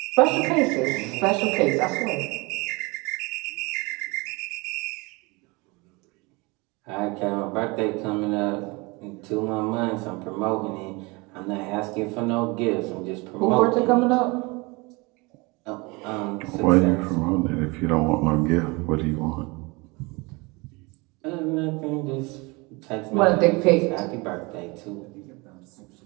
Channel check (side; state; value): left; quieter; 26.2 dB